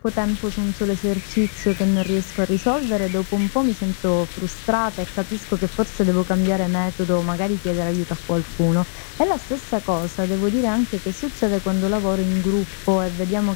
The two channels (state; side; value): silent; right; digital silence